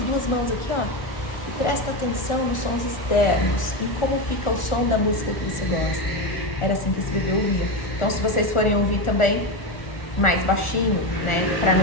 mãos aqui, ó, e presta atenção nos sons externos, em como fica o som da música que você gosta. Era assim que esse bebê ouvia. Então, se vocês forem ouvir também, mais baixinho, né, para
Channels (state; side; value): late; right; 1.4 ms